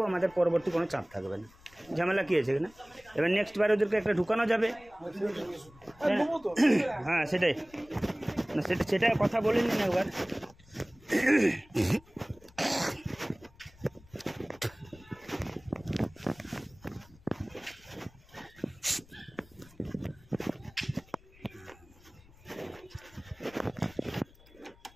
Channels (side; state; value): left; noise; rumble, 25 dB below the sound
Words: আমাদের পরবর্তী কোনো চাপ থাকবে না। ঝামেলা কী আছে এখানে? এবার নেক্সট বার ওদেরকে একটা ঢুকানো যাবে। দেবো তো। হ্যাঁ সেটাই না, সেটা কথা বলে নিন একবার।